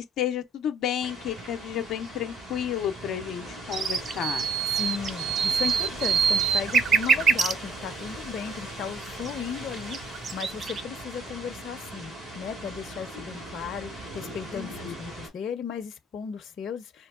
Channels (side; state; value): both; normal; correlation 0.61